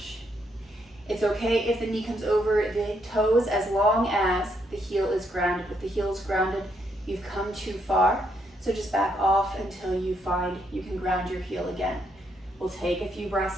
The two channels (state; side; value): normal; both; correlation 0.75